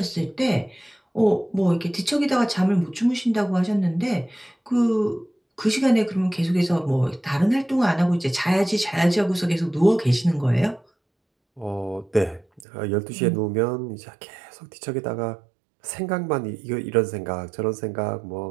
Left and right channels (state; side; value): drops out; left; at 12.7 s